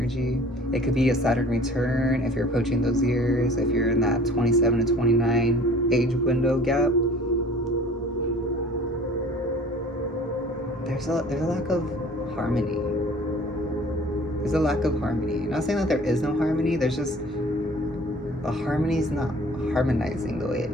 It could be a Saturn return if you're approaching those years, if you're in that 27 to 29 age window gap. There's a lack of harmony. There's a lack of harmony. I'm not saying that there is no harmony. There's just, the harmony's not harmonizing the way it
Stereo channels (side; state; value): both; normal; correlation 0.48